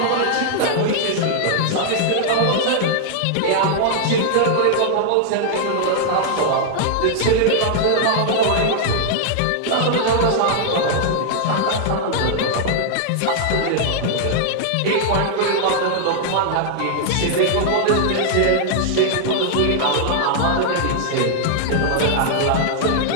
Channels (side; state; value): both; different; correlation -0.01